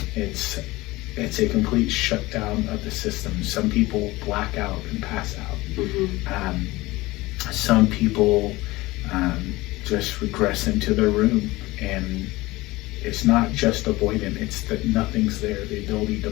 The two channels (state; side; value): quieter; right; 20.2 dB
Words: It's a complete shutdown of the system. Some people black out and pass out. Mm-hmm. Some people just regress into their room, and it's not just avoidant, it's that nothing's there. The ability to